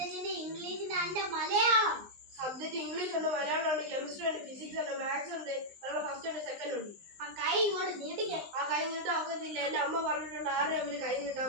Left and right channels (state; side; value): late; left; 19 ms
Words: ഇംഗ്ലീഷിന്റെ അതിന്റെ മലയാളം. സബ്ജക്റ്റ് ഇംഗ്ലീഷ് ഉണ്ട്, മലയാളം ഉണ്ട്, കെമിസ്ട്രി ഉണ്ട്, ഫിസിക്സ് ഉണ്ട്, മാത്സ് ഉണ്ട്, ഫസ്റ്റ് ഉണ്ട്, സെക്കൻഡ് ഉണ്ട്. ആ കൈ ഇങ്ങോട്ട് നീട്ടിക്കാൻ. ആ കൈ നീട്ടാൻ ഒക്കത്തില്ല. എന്റെ അമ്മ പറഞ്ഞിട്ടുണ്ട് ആരുടെ അമ്മന് കൈ നീട്ടാൻ